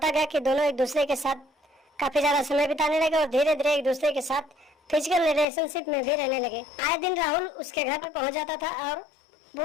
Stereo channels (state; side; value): drops out; right; at 5.5 s